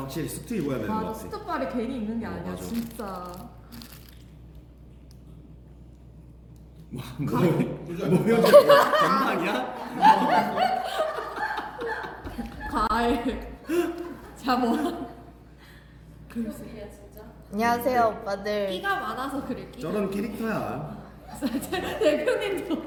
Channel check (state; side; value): identical; both; correlation 1.00